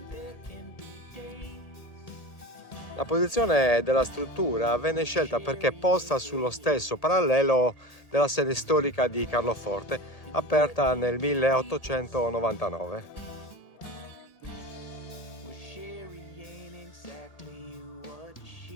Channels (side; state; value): right; late; 1.8 ms